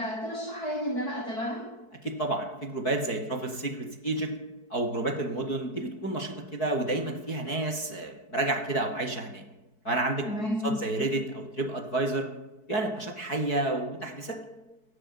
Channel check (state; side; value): late; right; 4.6 ms